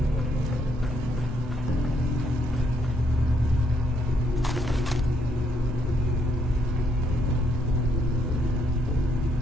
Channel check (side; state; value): both; normal; correlation 0.72